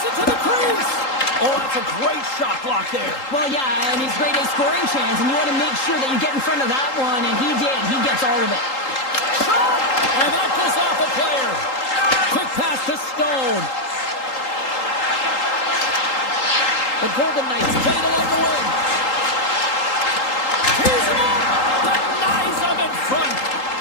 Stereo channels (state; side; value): late; right; 3.8 ms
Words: it to the crease. Oh, that's a great shot block there. Well, yeah, and it's grade A scoring chance, and you want to make sure that you get in front of that one, and he did. He gets all of it. Shot! And that goes off a player. Quick pass to Stone. The Golden Knights play it along the wing. Here's him up. Denies him in front.